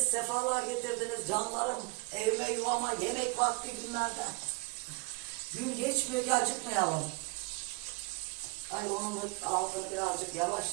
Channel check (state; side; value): quieter; left; 29.3 dB